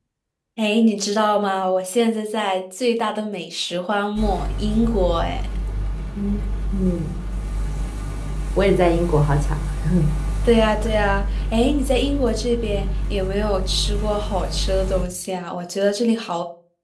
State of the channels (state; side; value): identical; both; correlation 1.00